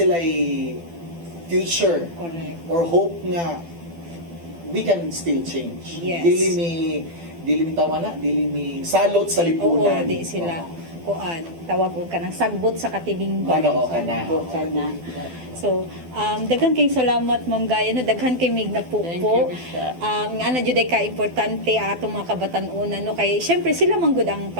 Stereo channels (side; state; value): left; late; 12 ms